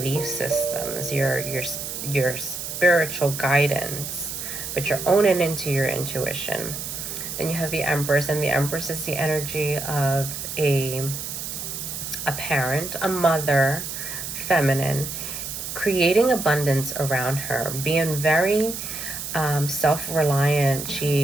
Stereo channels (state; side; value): noise; right; hiss, 6 dB below the sound